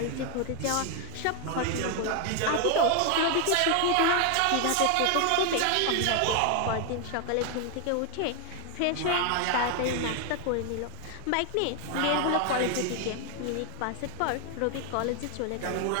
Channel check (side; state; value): both; different; correlation 0.01